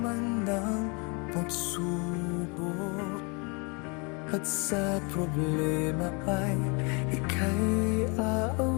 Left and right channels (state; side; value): quieter; right; 31.8 dB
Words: ng pagsubok at sa problema ay ika'y